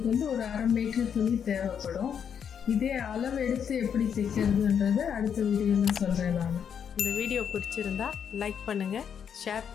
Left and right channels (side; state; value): right; quieter; 7.8 dB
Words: வந்து ஒரு 1/2 மீட்டர் துணி தேவைப்படும். இதே அளவு எடுத்து எப்படி தைக்கிறதுன்றது அடுத்த வீடியோவில் சொல்கிறேன் நான். இந்த வீடியோ பிடிச்சிருந்தா லைக் பண்ணுங்கள், ஷேர்